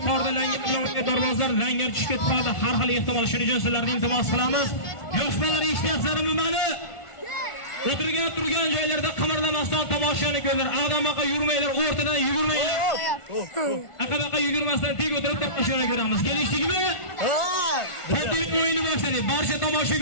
langar darvozlar langar tushib ketib qoladi. Har xil ehtimol. Shuning uchun sizlarga iltimos qilamiz. Yosh bolalar eshityapsizlarmi meni? O'tirgan turgan joylarda qimirlamasdan tomoshani ko'rlar. Aqdamaqa yurmanglar, o'rtadan yugurmanglar. Aqdamaqa yugurmasdan teg o'tirib tomoshani ko'ramiz. Kelishdingmi? Katta o'yinni boshladik. Barcha tomosha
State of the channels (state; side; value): late; right; 1.4 ms